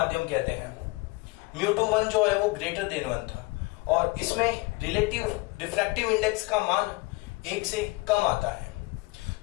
कहते हैं। μ2 जो है वो ग्रेटर देन 1 था, और इसमें रिलेटिव रिफ्रैक्टिव इंडेक्स का मान 1 से कम आता है।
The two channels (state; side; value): quieter; right; 24.2 dB